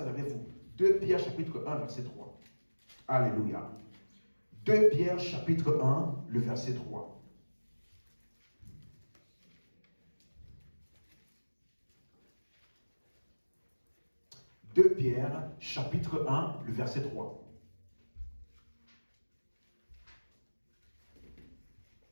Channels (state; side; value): inverted; both; correlation -1.00